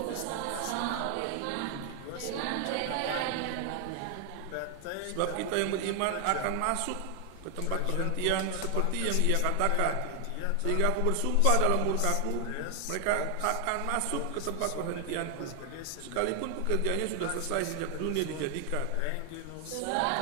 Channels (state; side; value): different; both; correlation 0.00